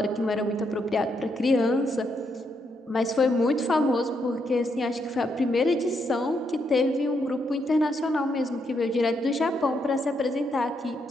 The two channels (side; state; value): both; normal; correlation 0.78